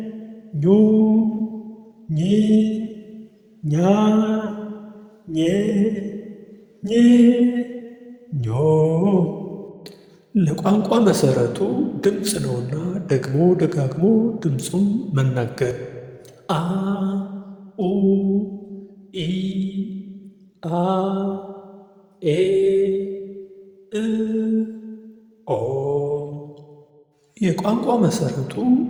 ኙ ኚ ኛ ኜ ኜ ኞ። ለቋንቋ መሰረቱ ድምፅ ነውና ደግሞ ደጋግሞ ድምፁን መናገር። አ ኡ ኢ አ ኤ እ ኦ። የቋንቋ መሰረቱ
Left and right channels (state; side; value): identical; both; correlation 1.00